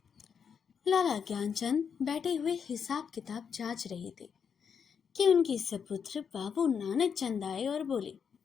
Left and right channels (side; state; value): right; quieter; 6.9 dB